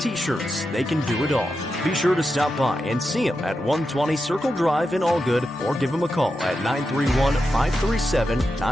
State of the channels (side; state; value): both; normal; correlation 0.88